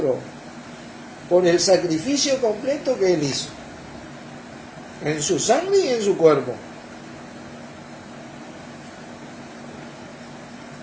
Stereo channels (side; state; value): both; identical; correlation 1.00